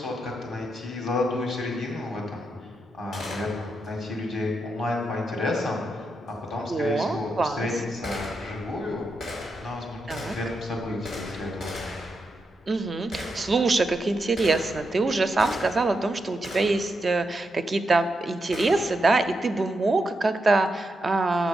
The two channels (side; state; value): both; normal; correlation 0.85